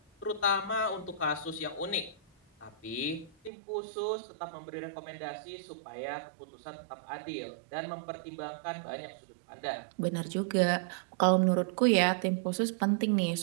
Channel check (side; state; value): left; drops out; at 3.5 s